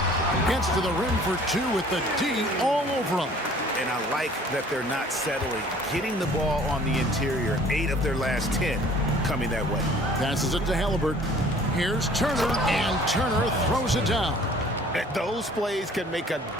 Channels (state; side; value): normal; both; correlation 0.53